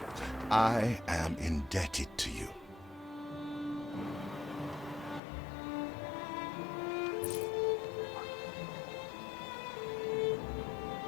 I am indebted to you.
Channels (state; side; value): drops out; right; at 5.2 s